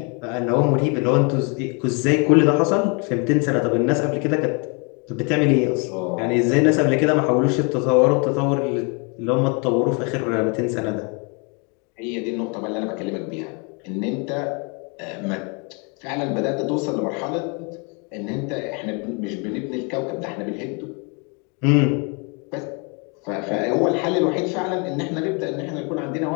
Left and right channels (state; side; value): quieter; right; 33.8 dB